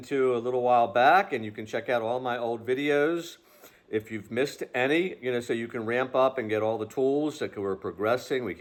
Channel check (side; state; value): both; identical; correlation 1.00